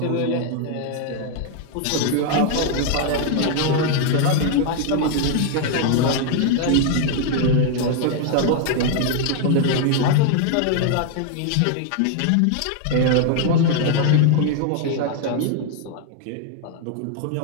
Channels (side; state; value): both; different; correlation 0.00